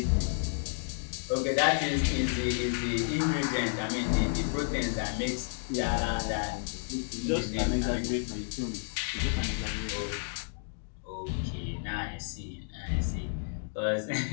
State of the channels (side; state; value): right; silent; digital silence